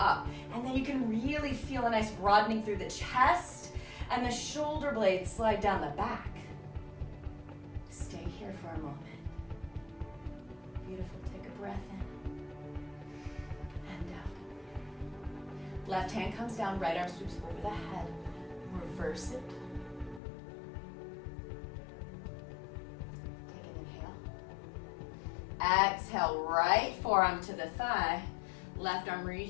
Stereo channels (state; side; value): drops out; right; at 20.2 s